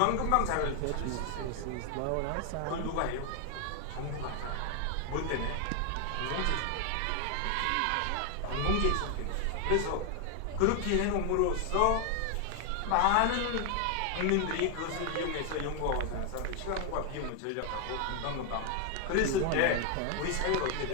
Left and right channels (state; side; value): different; both; correlation 0.00